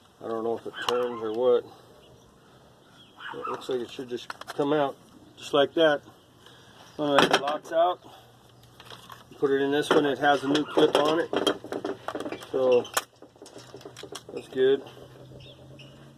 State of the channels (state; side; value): identical; both; correlation 1.00